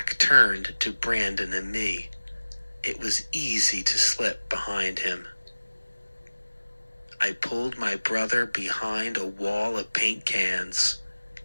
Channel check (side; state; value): both; inverted; correlation -1.00